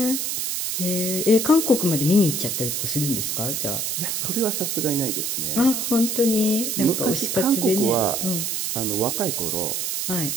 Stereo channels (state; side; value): noise; right; hiss, 1 dB below the sound